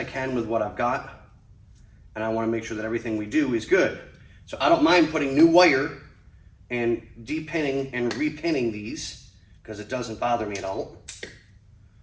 can with what I've got, and I want to make sure that everything we do is good. So I don't mind putting new wire and depinning and repinning these because it doesn't bother me at all.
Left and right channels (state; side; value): identical; both; correlation 1.00